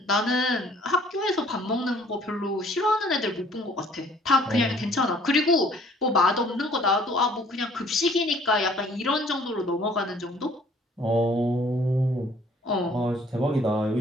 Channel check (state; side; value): normal; both; correlation 0.57